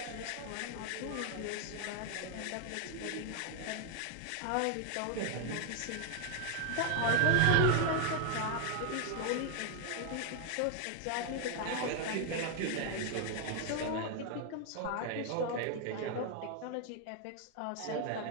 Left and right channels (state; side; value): different; both; correlation 0.00